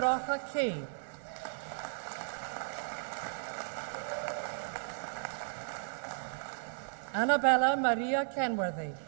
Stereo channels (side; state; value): left; silent; digital silence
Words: K. Annabella Maria Kenworthy.